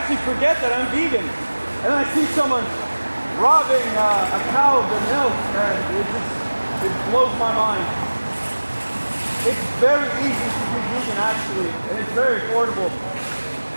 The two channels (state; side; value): inverted; both; correlation -1.00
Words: forget that I'm vegan. And then I see someone robbing a cow of their milk, and it blows my mind. It's very easy to be vegan, actually, and it's very affordable.